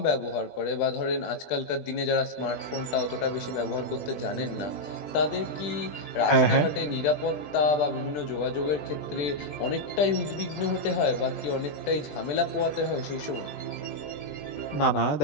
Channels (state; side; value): late; right; 20 ms